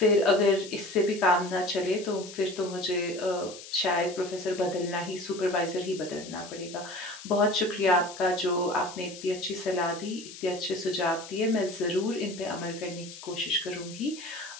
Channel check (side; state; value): left; noise; hiss, 14 dB below the sound